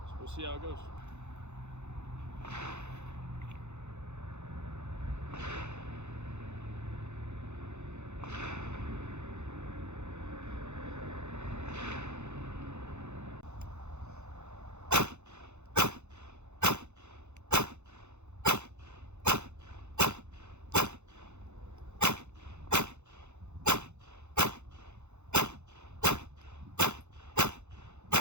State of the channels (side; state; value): left; late; 0.83 ms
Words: So we'll see how it goes.